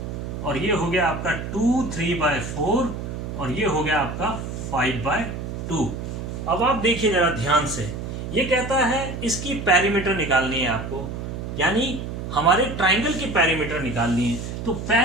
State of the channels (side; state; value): right; noise; hum, 6 dB below the sound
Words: और ये हो गया आपका 3/4, और ये हो गया आपका 5/2। अब आप देखिए जरा ध्यान से, ये कहता है इसकी पेरीमीटर निकालनी है आपको, यानी हमारे ट्राइंगल की पेरीमीटर निकालनी है। तो